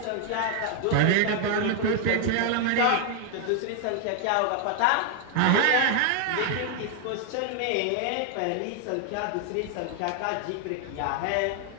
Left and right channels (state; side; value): different; both; correlation 0.00